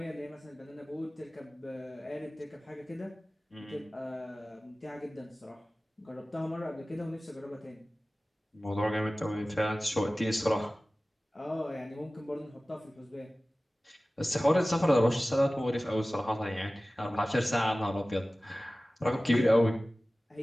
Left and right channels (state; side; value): normal; both; correlation 0.97